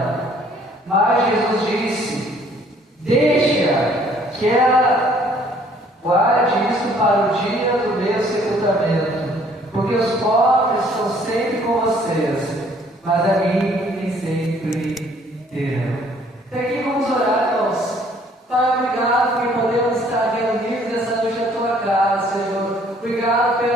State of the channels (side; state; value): both; normal; correlation 0.60